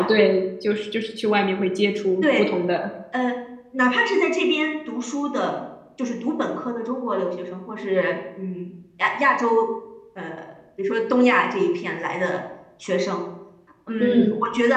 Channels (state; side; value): identical; both; correlation 1.00